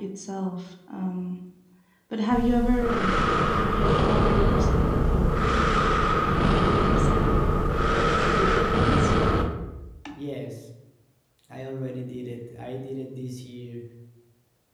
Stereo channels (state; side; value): identical; both; correlation 1.00